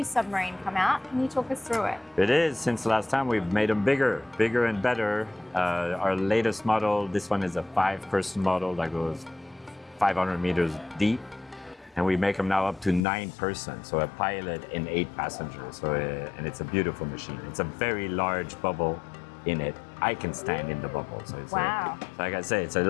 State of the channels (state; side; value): drops out; right; at 13.1 s